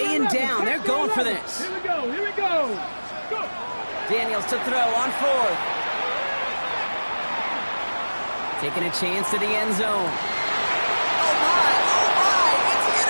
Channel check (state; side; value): inverted; both; correlation -1.00